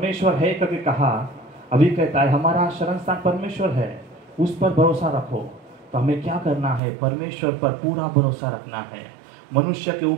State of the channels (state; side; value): drops out; left; at 6.8 s